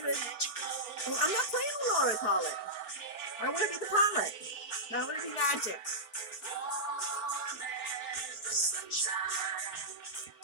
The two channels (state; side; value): late; right; 4.4 ms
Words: I'm not playing on autopilot. I want to be the pilot. I want to be magic.